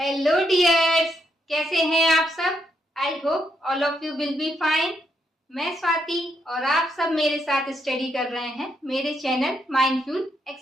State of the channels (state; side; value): normal; both; correlation 0.78